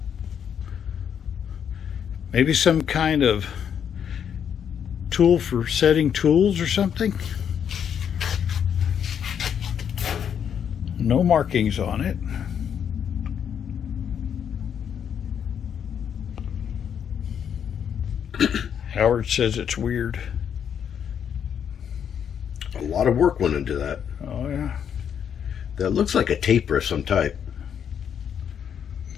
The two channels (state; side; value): quieter; right; 8.2 dB